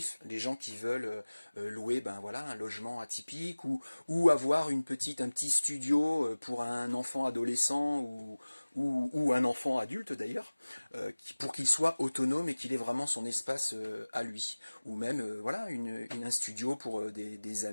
les gens qui veulent louer voilà, un logement atypique, ou avoir un petit studio pour un enfant adolescent, ou un enfant adulte d'ailleurs, pour qu'il soit autonome et qu'il ait vraiment son espace à lui. Ou même voilà, un studio pour des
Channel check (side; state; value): both; inverted; correlation -1.00